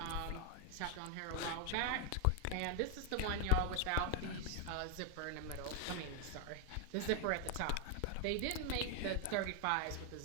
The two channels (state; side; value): different; both; correlation 0.00